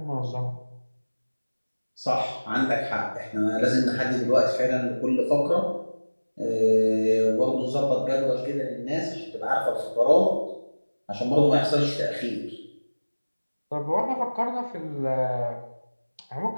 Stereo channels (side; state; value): both; inverted; correlation -1.00